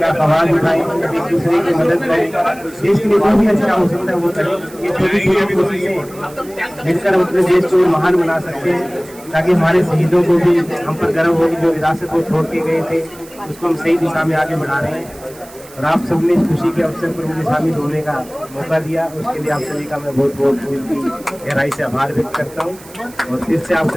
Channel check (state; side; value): noise; right; hiss, 21 dB below the sound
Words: आवाज़ उठाएं, एक दूसरे की मदद करें, देश के लिए जो भी अच्छा हो सकता है वो करें। ये छोटी छोटी कोशिशें मिलकर हम अपने देश को महान बना सकते हैं ताकि हमारे शहीदों को भी हम पर गर्व हो कि जो विरासत को छोड़ के गए थे उसको हम सही दिशा में आगे बढ़ा रहे हैं। और आप सबने इस खुशी के अवसर पर मुझे शामिल होने का मौका दिया, उसके लिए आप सभी का मैं बहुत बहुत गहराई से आभार व्यक्त करता हूँ और फिर से आप